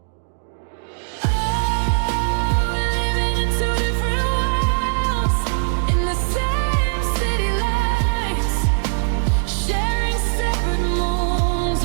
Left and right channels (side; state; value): left; silent; digital silence